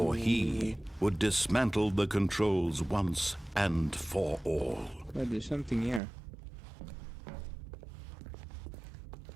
he would dismantle the controls once and for all. But there's something here.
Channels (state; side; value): drops out; left; at 6.0 s